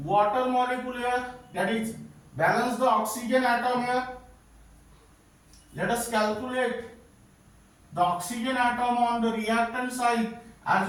molecule here, that is balance the oxygen atom here. Let us calculate the oxygen atom on the reactant side as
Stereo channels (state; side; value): identical; both; correlation 1.00